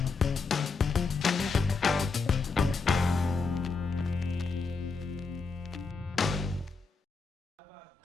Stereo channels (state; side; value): quieter; right; 4.4 dB